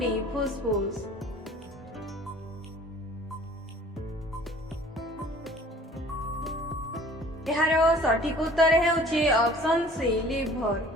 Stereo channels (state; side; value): normal; both; correlation 0.49